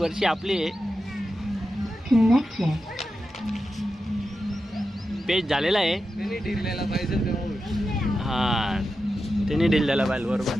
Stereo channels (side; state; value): both; normal; correlation 0.90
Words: आपली आहे. पेज झालेला आहे. त्यांनी ढिरलेला पाहिजे तेव्हा. हा त्यांनी ढील द्यायला पाहिजे बरोबर.